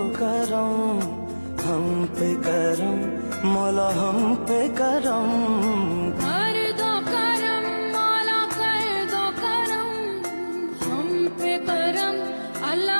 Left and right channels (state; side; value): inverted; both; correlation -1.00